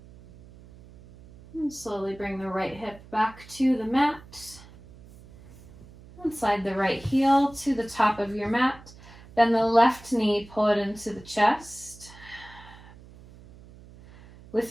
And slowly bring the right hip back to the mat. And slide the right heel to the top of your mat. Bend the left knee, pull it into the chest.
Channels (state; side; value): noise; right; hum, 21 dB below the sound